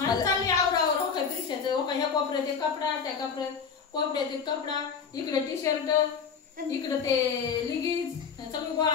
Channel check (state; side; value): quieter; right; 6.2 dB